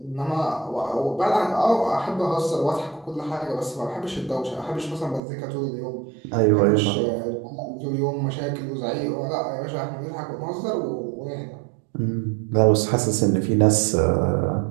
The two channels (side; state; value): left; drops out; at 5.2 s